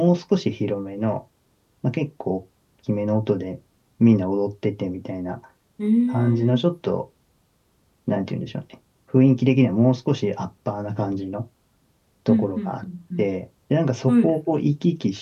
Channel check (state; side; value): identical; both; correlation 1.00